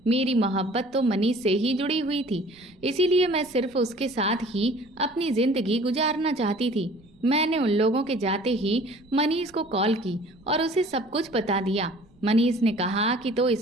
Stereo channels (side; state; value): right; noise; rumble, 29 dB below the sound